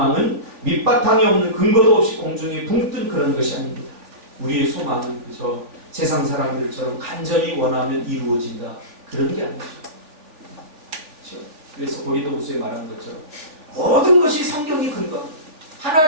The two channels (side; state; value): left; late; 3.4 ms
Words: 밑바탕이 없는 근거도 없이 공중에 붕 뜬 그런 것이 아닙니다. 우리의 소망은 그저 세상 사람들처럼 간절히 원하면 이루어진다, 그런 게 아니죠. 그렇죠? 그래서 고린도후서에 말한 것처럼 모든 것이 성경이 근거합니다.